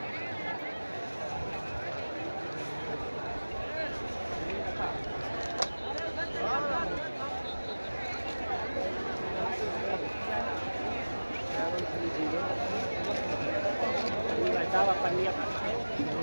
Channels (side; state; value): both; inverted; correlation -1.00